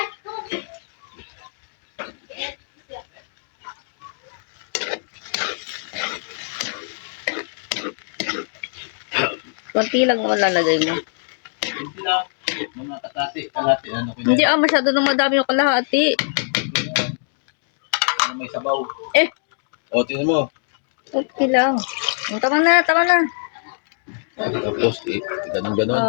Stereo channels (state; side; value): silent; right; 64 dB below the other